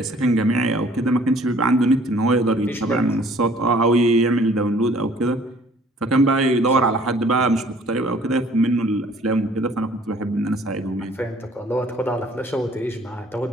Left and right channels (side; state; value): both; normal; correlation 0.56